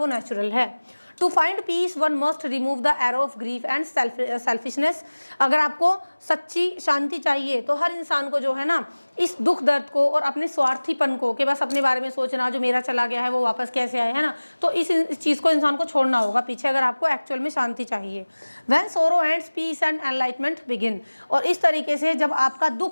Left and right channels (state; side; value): inverted; both; correlation -1.00